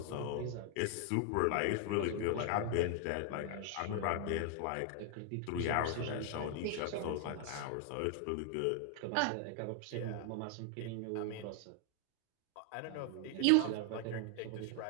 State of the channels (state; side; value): different; both; correlation 0.00